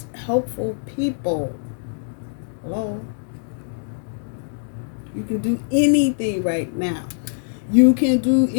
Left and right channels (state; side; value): silent; right; digital silence